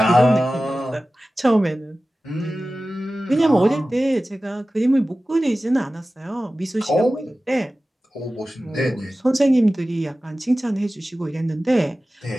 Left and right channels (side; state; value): both; normal; correlation 0.96